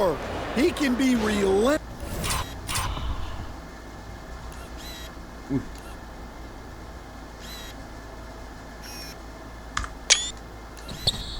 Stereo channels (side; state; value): both; identical; correlation 1.00